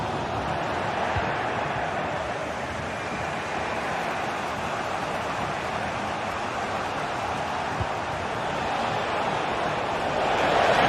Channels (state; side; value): identical; both; correlation 1.00